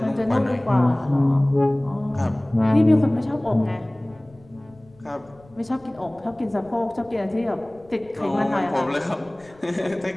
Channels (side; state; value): left; noise; rumble, 27 dB below the sound